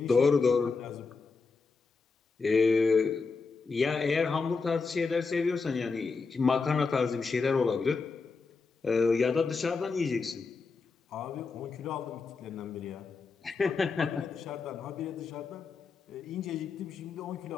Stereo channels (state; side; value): quieter; right; 4.6 dB